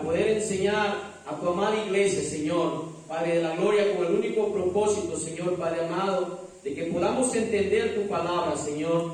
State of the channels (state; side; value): identical; both; correlation 1.00